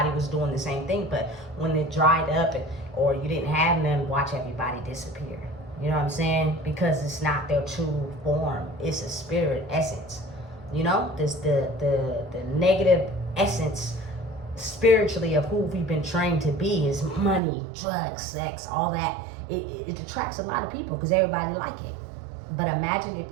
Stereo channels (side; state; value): left; drops out; at 17.4 s